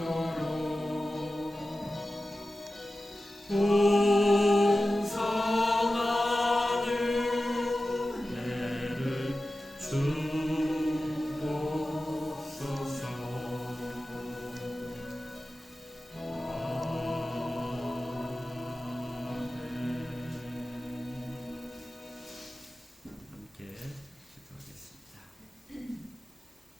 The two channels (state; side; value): normal; both; correlation 0.94